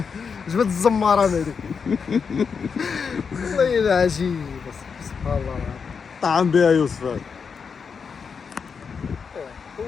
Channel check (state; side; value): quieter; right; 5.9 dB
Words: جبت الزمارة هذيك والله إلا عجيب سبحان الله طعم بها يوسف هذا.